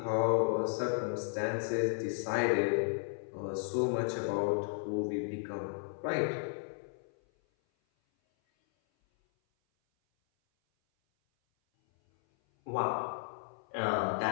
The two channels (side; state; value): right; silent; 55 dB below the other